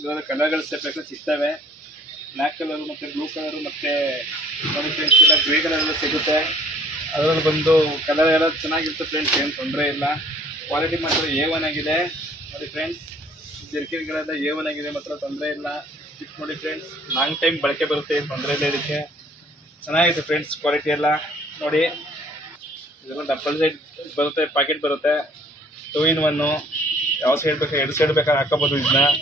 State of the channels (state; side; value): normal; both; correlation 0.56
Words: ಇವಾಗ ಕಲರ್ಗಳು ಬೇಕಾದ್ರೆ ಸಿಗ್ತವೆ, ಬ್ಲ್ಯಾಕ್ ಕಲರು ಮತ್ತು ಬ್ಲೂ ಕಲರು ಮತ್ತು ನೋಡಿ ಫ್ರೆಂಡ್ಸ್ ಇಲ್ಲ ಗ್ರೇ ಕಲರ್ ಎಲ್ಲ ಸಿಗುತ್ತೆ. ಅದರಲ್ಲಿ ಬಂದು ಕಲರ್ ಎಲ್ಲ ಚೆನ್ನಾಗಿರುತ್ತೆ ಫ್ರೆಂಡ್ಸ್, ಏನು ತೊಂದರೆ ಇಲ್ಲ. ಕ್ವಾಲಿಟಿ ಮಾತ್ರ A1 ಆಗಿದೆ ನೋಡಿ ಫ್ರೆಂಡ್ಸ್. ಜರ್ಕಿನ್ಗಳೆಲ್ಲ A1 ಆಗಿದೆ, ಮಾತ್ರ ತೊಂದರೆ ಇಲ್ಲ. ಇದು ನೋಡಿ ಫ್ರೆಂಡ್ಸ್, ಲಾಂಗ್ ಟೈಮ್ ಬಳಕೆ ಬರುತ್ತೆ, ಏನು ತೊಂದರೆ ಇಲ್ಲ. ಇದಕ್ಕೆ ಚೆನ್ನಾಗಿದೆ ಫ್ರೆಂಡ್ಸ್ ಕ್ವಾಲಿಟಿ ಎಲ್ಲ ನೋಡಿ. ಇದೆಲ್ಲ ಡಬಲ್ ಸೈಡ್ ಬರುತ್ತೆ, ಪ್ಯಾಕೆಟ್ ಬರುತ್ತೆ, 2-in-1. ಯಾವ ಸೈಡ್ ಬೇಕಾ, 2 ಸೈಡ್ ಬೇಕಾದ್ರೆ ಹಾಕೋಬೋದು ಇದನ್ನ